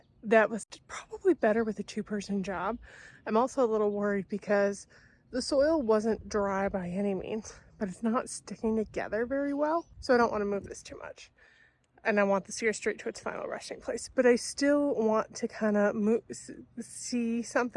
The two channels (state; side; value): identical; both; correlation 1.00